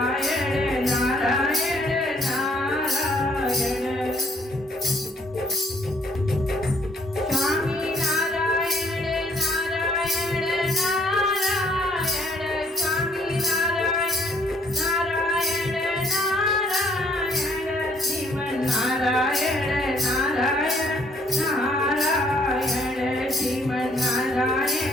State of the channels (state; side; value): normal; both; correlation 0.65